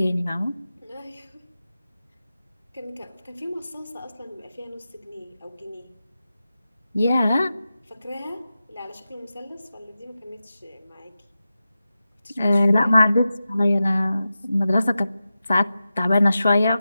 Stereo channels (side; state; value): both; inverted; correlation -0.93